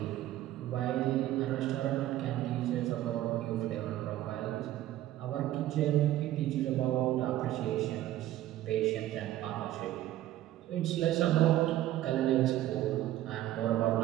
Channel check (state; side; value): quieter; left; 13.9 dB